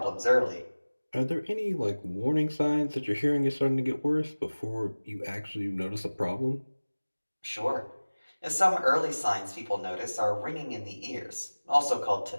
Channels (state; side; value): inverted; both; correlation -1.00